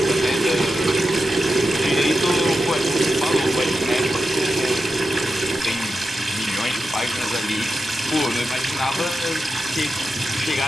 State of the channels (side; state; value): both; normal; correlation 0.89